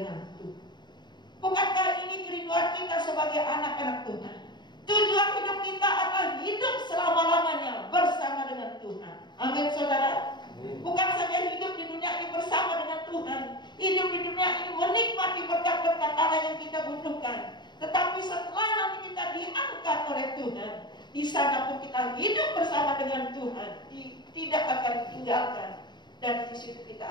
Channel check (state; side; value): late; right; 0.21 ms